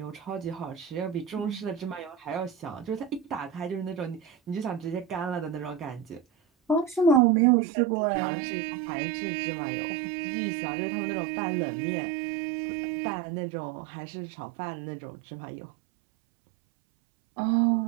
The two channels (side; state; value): left; drops out; at 7.2 s